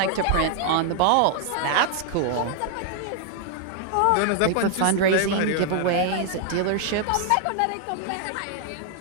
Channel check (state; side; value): different; both; correlation 0.00